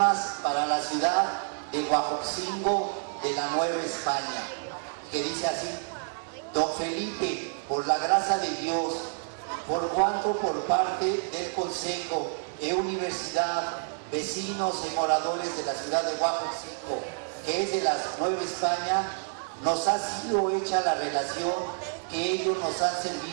para la ciudad de Huejotzingo de la Nueva España, que dice así: Don Felipe, por la gracia de Dios, por cuanto por parte del Consejo e Universidad, vecinos y moradores de la ciudad de Huejotzingo, que es de la Nueva España, nos ha sido hecha la relación que ellos nos han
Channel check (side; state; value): left; silent; digital silence